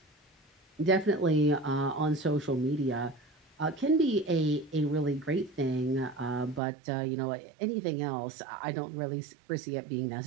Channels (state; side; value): drops out; left; at 6.6 s